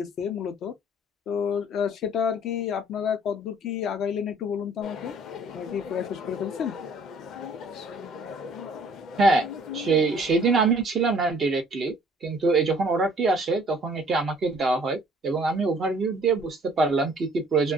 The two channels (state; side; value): normal; both; correlation 0.56